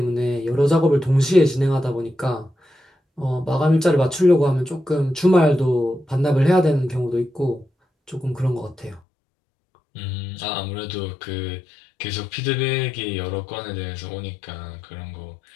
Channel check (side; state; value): right; drops out; at 9.0 s